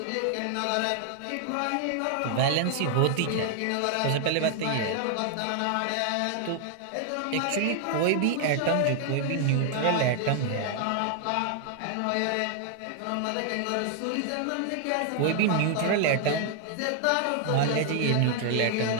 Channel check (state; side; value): different; both; correlation 0.00